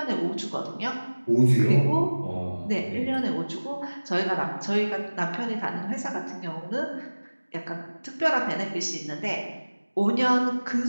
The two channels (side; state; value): both; inverted; correlation -1.00